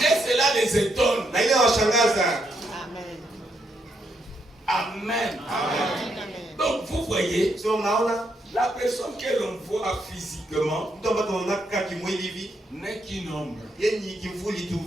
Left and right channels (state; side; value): normal; both; correlation 0.78